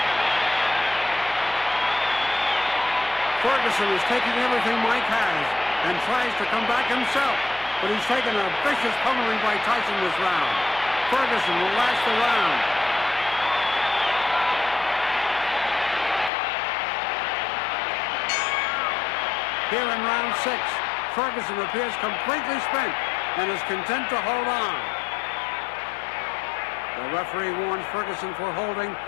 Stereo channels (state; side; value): drops out; right; at 16.3 s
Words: Ferguson is taking everything Mike has and tries to come back himself, but he's taken a vicious pummeling by Tyson this round. Ferguson will last the round. Here in round 6, Ferguson appears completely spent and is content to hold on. The referee warns Ferguson for holding